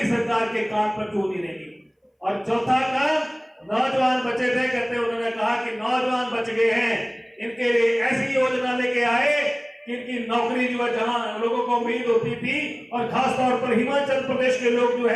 सरकार के काम पर क्यों नहीं रहेगी। और चौथा काम, नौजवान बचे थे, कहते उन्होंने कहा कि नौजवान बच गए हैं, इनके लिए ऐसी योजना लेके आए कि इनकी नौकरी जो है जहां लोगों को उम्मीद होती थी, और खासतौर पर हिमाचल प्रदेश के लोग जो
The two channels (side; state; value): both; identical; correlation 1.00